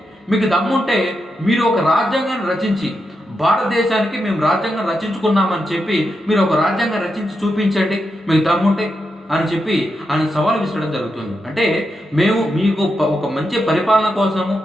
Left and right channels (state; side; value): normal; both; correlation 0.85